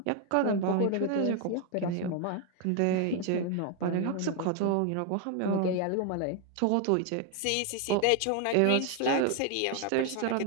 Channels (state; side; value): different; both; correlation 0.01